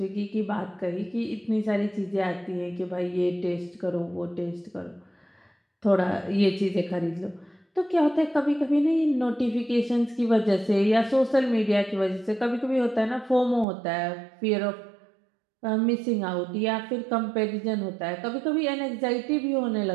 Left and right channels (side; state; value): left; drops out; at 13.7 s